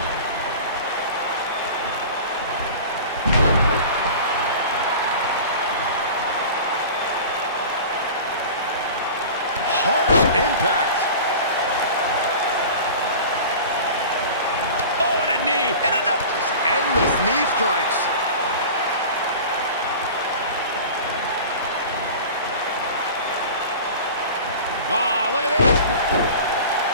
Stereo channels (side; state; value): both; inverted; correlation -0.37